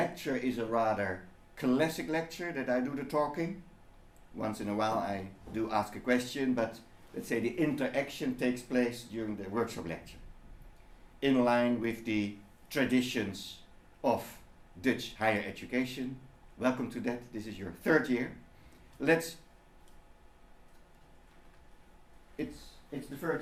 is a rather classic lecture, that I do the talking. Once in a while I do ask a question, but let's say the interaction takes place during the workshop lecture, in line with the traditions of Dutch higher education. Welcome to that. This is your third year. It's the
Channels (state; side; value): identical; both; correlation 1.00